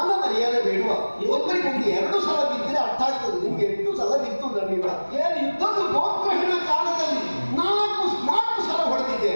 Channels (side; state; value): both; inverted; correlation -1.00